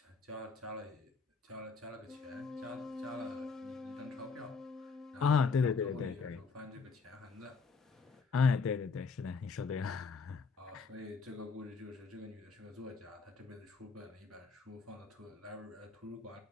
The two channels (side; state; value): right; quieter; 4.9 dB